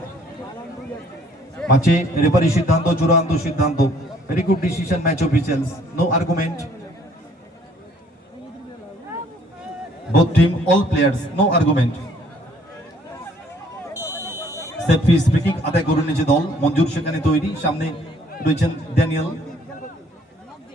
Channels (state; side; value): normal; both; correlation 0.61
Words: ম্যাচে রেফারি সিদ্ধান্ত চূড়ান্ত সিদ্ধান্ত very good decision match officials no argument both team all players no argument set piece free kick আদায় করে নিয়েছে দল মঞ্জুর সেখানে তৈরি সামনে রয়েছেন ড্যানিয়েল।